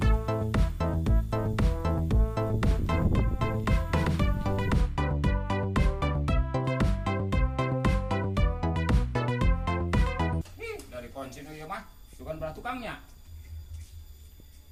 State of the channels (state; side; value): identical; both; correlation 1.00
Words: Dari kunci ieu mah, bukan belah tukangnya.